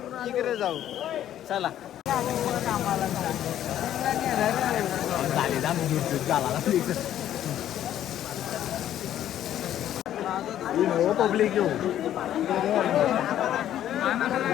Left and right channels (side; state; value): right; quieter; 11.5 dB